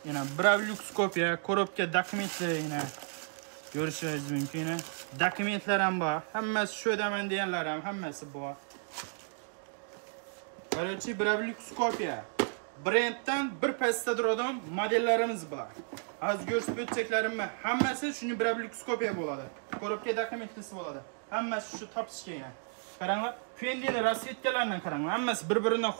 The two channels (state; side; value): silent; left; 56 dB below the other